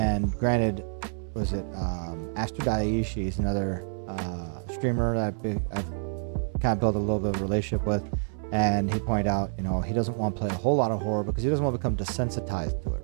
granted, was it Astro Daiichi is another streamer that I've kind of built a little bit of a relationship with, and he pointed out, you know, he doesn't want to play a whole lot of horror because he doesn't want to become desensitized to it,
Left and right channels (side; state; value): left; silent; 59 dB below the other